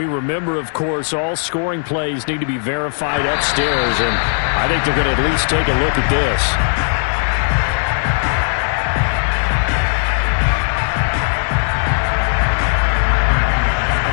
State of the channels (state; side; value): silent; right; digital silence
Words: remember, of course, all scoring plays need to be verified upstairs. And I think they're going to at least take a look at this.